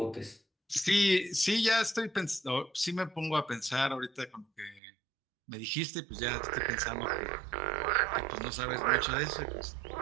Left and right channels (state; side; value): drops out; left; at 4.8 s